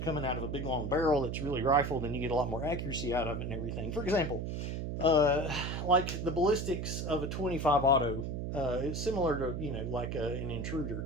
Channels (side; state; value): right; noise; hum, 3 dB below the sound